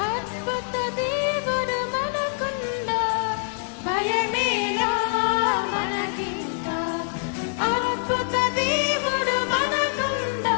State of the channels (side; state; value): right; silent; 61 dB below the other